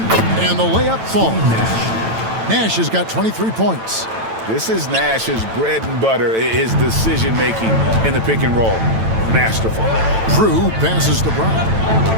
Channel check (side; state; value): left; late; 9.0 ms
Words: the layup falls. Nash has got 23 points. This is Nash's bread and butter, his decision-making in the pick and roll. Masterful. Drew passes to Brown.